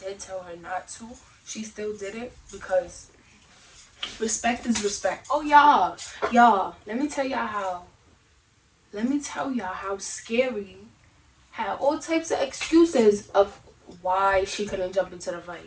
tell her not to, she still did it because respect is respect. Oh y'all, let me tell y'all how scary had all types of excuses of why she couldn't jump into the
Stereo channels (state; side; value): identical; both; correlation 1.00